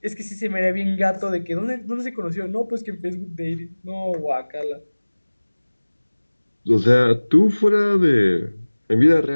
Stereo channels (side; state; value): both; inverted; correlation -1.00